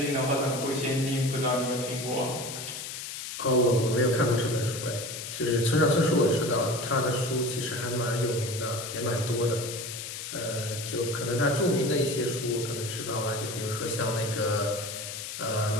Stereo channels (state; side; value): noise; left; hiss, 7 dB below the sound